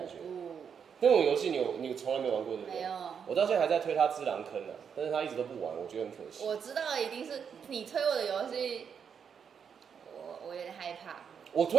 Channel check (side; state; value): left; quieter; 7.1 dB